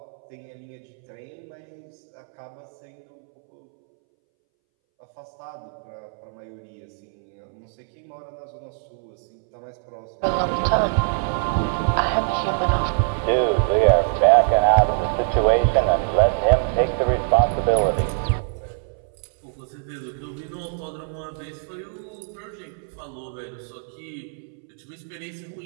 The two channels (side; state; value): left; silent; 63 dB below the other